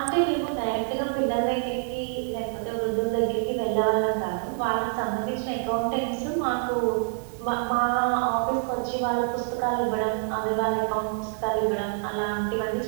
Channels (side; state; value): left; silent; 61 dB below the other